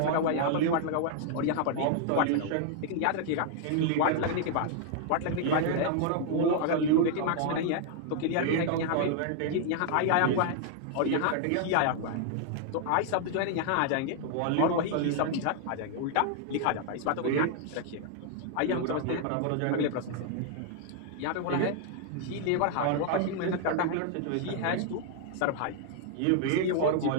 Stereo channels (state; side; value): different; both; correlation 0.00